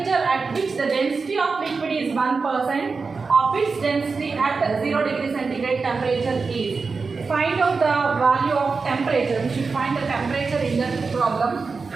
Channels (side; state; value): left; quieter; 4.6 dB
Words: at which the density of liquid is 1% of its density at 0 degree centigrade temperature is. Find out the value of temperature. We should find the temperature in the problem.